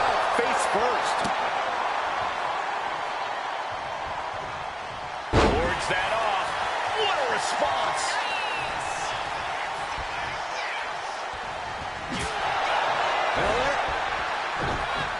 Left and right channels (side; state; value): both; identical; correlation 1.00